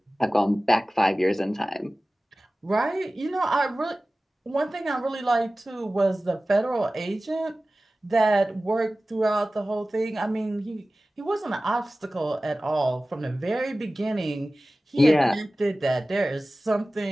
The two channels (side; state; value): both; normal; correlation 0.97